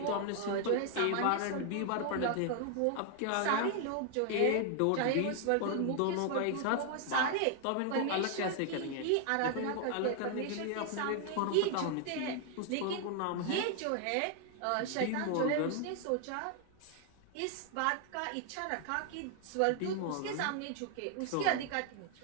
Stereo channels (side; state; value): both; different; correlation 0.00